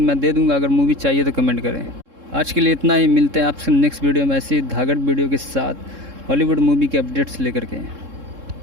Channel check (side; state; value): left; late; 3.7 ms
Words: मैं दे दूँगा, अगर मूवी चाहिए तो कमेंट करें। आज के लिए इतना ही, मिलते हैं आपसे नेक्स्ट वीडियो में ऐसी धागड़ वीडियो के साथ हॉलीवुड मूवी के अपडेट्स लेकर के।